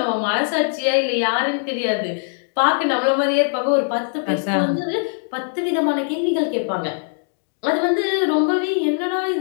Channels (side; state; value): right; silent; digital silence